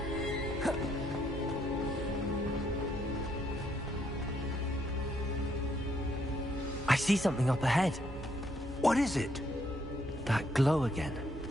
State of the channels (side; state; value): both; normal; correlation 0.72